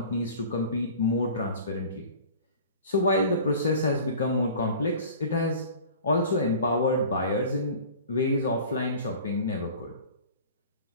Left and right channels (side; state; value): both; inverted; correlation -0.42